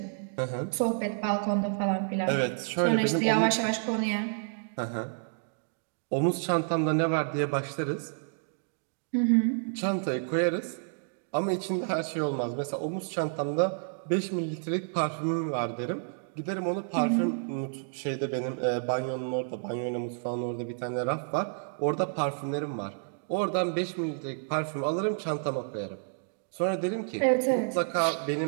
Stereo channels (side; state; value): left; silent; digital silence